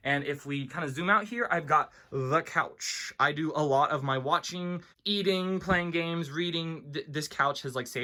And if we kind of zoom out here, I've got the couch. I do a lot of my watching, eating, playing games, reading. This couch has like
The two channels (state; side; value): identical; both; correlation 1.00